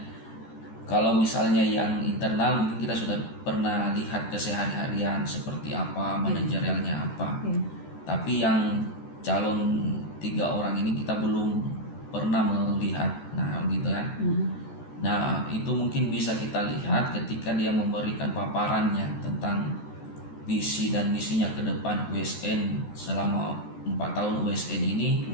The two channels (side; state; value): right; late; 14 ms